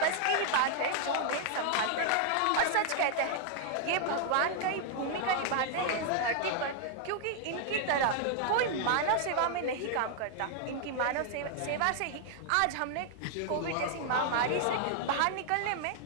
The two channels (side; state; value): both; different; correlation 0.00